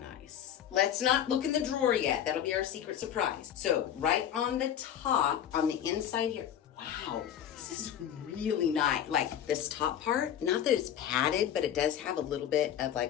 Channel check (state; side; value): quieter; right; 9.9 dB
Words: Let's not look in the drawer yet. That'll be our secret surprise. So right on the top, on the inside here, wow, this is really nice. Like this top part, not that it's padded, but it does have a little bit of